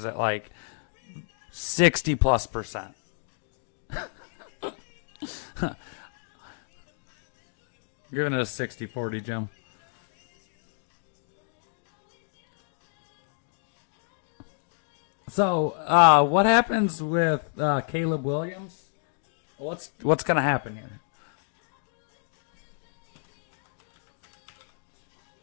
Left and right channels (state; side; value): silent; right; digital silence